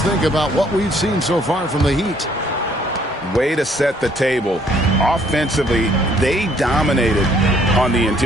think about what we've seen so far from the Heat? Way to set the table. Offensively, they dominated on the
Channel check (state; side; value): normal; both; correlation 0.63